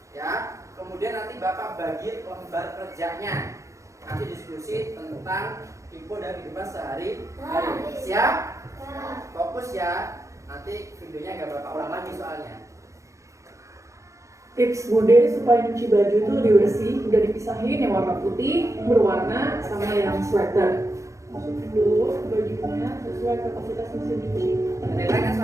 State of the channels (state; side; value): late; left; 0.15 ms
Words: Ya. Kemudian nanti Bapak bagi lembar kerjanya. Nanti diskusi tentang info dari kehidupan sehari-hari. Siap? Fokus ya. Nanti videonya nggak Bapak ulang lagi soalnya. Tips Bude supaya nyuci baju itu lebih bersih, udah dipisahin yang warna putih, berwarna, sama yang sweater. Masukin dulu bajunya sesuai kapasitas mesin cuci.